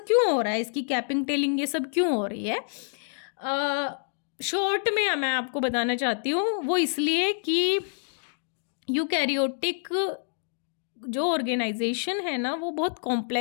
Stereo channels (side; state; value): right; silent; 60 dB below the other